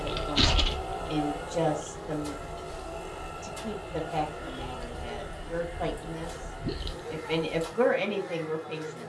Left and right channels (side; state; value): both; identical; correlation 1.00